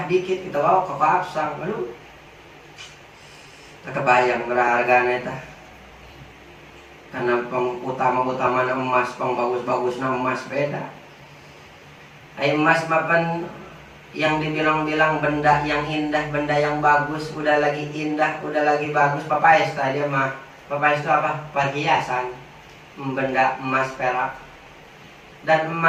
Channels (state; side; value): identical; both; correlation 1.00